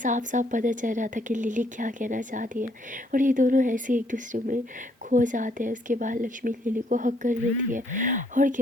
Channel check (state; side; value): normal; both; correlation 0.69